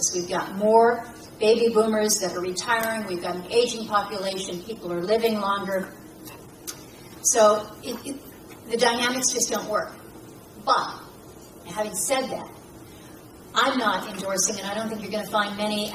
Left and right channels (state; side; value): identical; both; correlation 1.00